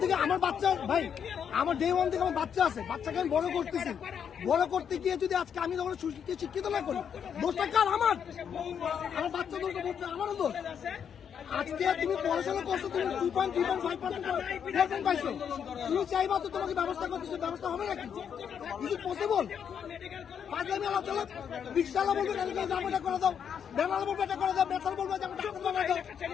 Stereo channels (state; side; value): quieter; right; 7.8 dB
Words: থেকে আমার বাচ্চা, ভাই আমার ডে ওয়ান থেকে আমার বাচ্চা আছে, বাচ্চাকে আমি বড় করতেছি, বড় করতে গিয়ে যদি আজকে আমি যখন শিক্ষিত না করি, দোষটা কার? আমার বাচ্চা দোষ, আমারও দোষ। আজকে তুমি পড়াশোনা করছো, তুমি 2.3.5% পাইছো, তুমি চাইবা তো তোমাকে ব্যবস্থা করতেছো, ব্যবস্থা হবে নাকি? Is it possible? পাঁচলামি আলাপ চলো, রিক্সাওয়ালা বলবে এটা করে দাও, বেলাল বলবে এটা করে দাও, বেতাল বলবে যে ডাক্তার বানাই দাও।